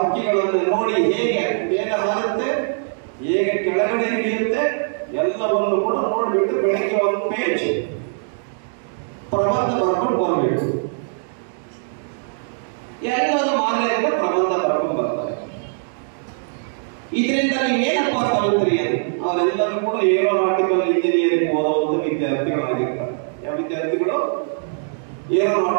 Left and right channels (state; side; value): silent; left; digital silence